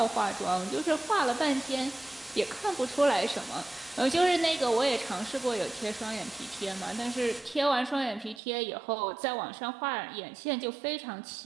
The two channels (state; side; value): drops out; left; at 8.4 s